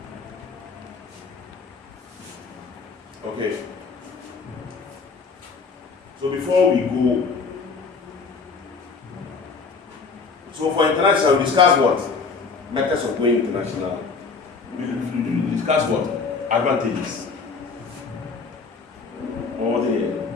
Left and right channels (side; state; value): right; quieter; 4.8 dB